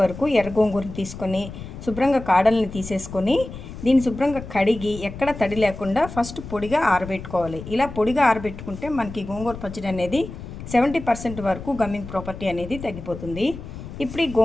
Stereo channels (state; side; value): noise; left; rumble, 12 dB below the sound